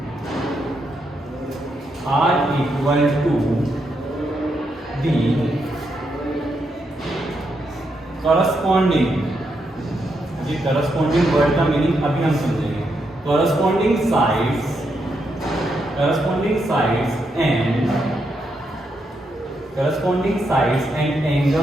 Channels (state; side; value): normal; both; correlation 0.81